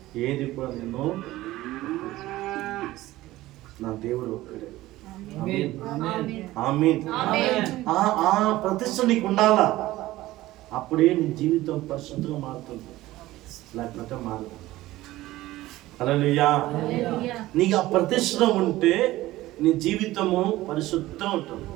ఏది కూడా నేను, నా దేవుడు ఒక్కడే. ఆమేన్. ఆ ప్రతిష్ఠ నీకు ఉండాలా, అప్పుడే నీ జీవితం పరిశుద్ధంగా మారుతుంది, లేకపోతే మారదు. హల్లెలూయా. నీకు ఆ ప్రతిష్ఠ ఉంటే నీ జీవితము పరిశుద్ధంగా ఉంటుంది.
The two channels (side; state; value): left; quieter; 16.9 dB